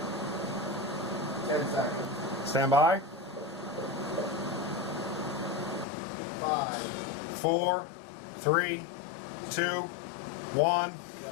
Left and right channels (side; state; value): right; drops out; at 5.9 s